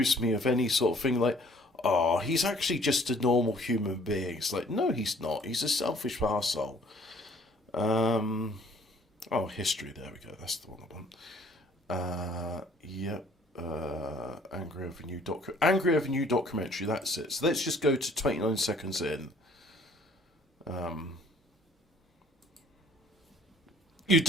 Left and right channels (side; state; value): both; normal; correlation 0.56